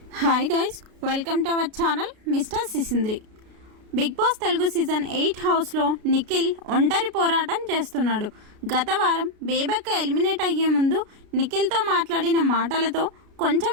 Hi guys, welcome to our channel mister Sisindri. Bigg Boss Telugu season 8 హౌస్లో నిఖిల్ ఒంటరి పోరాటం చేస్తున్నాడు. గత వారం బేబక్క ఎలిమినేట్ అయ్యే ముందు నిఖిల్తో మాట్లాడిన మాటలతో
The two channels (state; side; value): late; left; 33 ms